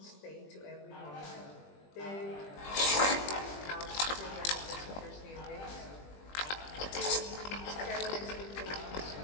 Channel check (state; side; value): late; right; 20 ms